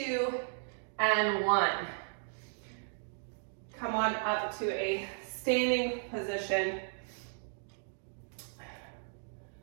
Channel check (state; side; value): silent; left; digital silence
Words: and 1. Come on up to a standing position.